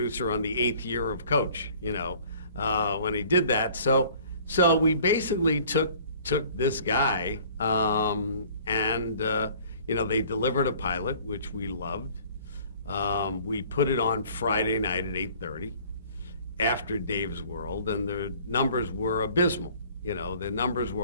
on the 8th year of Coach, when he did that. So we basically took this guy, and they delivered a pilot, which we loved. We put it on Friday night at 8:30 after Dave's World, and the numbers were abysmal. The numbers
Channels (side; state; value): both; inverted; correlation -0.53